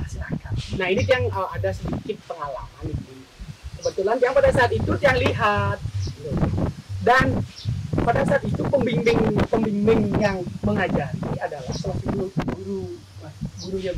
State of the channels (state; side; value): identical; both; correlation 1.00